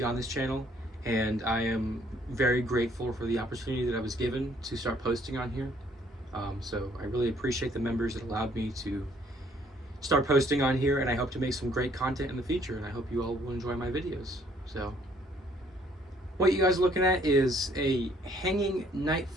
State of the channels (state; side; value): normal; both; correlation 0.63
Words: on this channel, and I am very grateful for the opportunity that I was given to start posting on here. So I really appreciate the members that allowed me to start posting on here, and I hope to make some great content in the future, and I hope you all will enjoy my videos. So what you guys are looking at is a hanging night